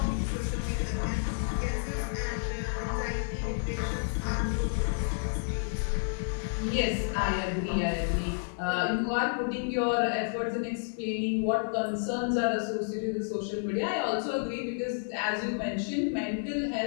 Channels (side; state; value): right; silent; 57 dB below the other